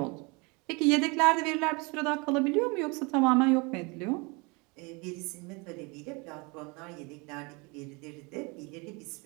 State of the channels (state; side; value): quieter; left; 28.7 dB